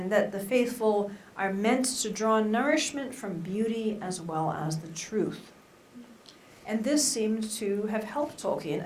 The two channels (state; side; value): identical; both; correlation 1.00